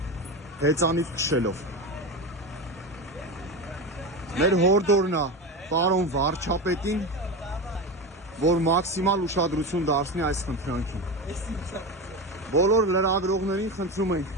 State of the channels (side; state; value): both; normal; correlation 0.21